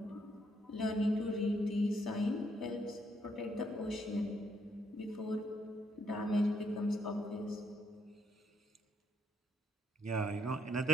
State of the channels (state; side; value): normal; both; correlation 0.73